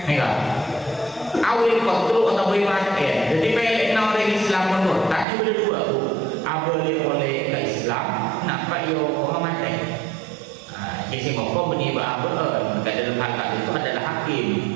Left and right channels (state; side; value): drops out; left; at 5.2 s